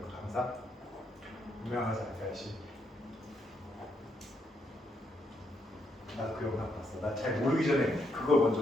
그 강사? 유명하지 않다시. 나 그 영상 봤어. 나 잘 모르기 전에 그걸 먼저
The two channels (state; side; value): normal; both; correlation 0.77